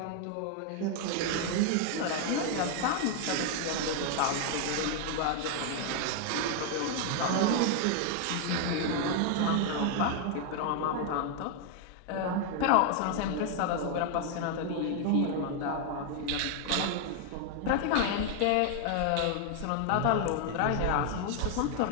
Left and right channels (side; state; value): both; different; correlation 0.00